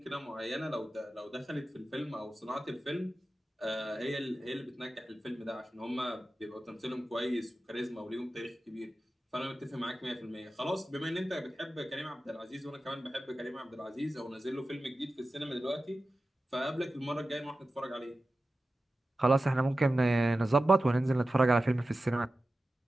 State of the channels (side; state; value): both; normal; correlation 0.94